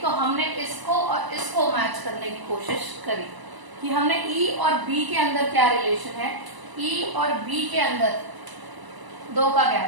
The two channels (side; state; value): left; late; 1.0 ms